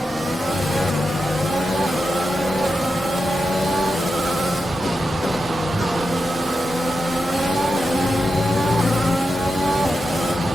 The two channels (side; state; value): both; normal; correlation 0.89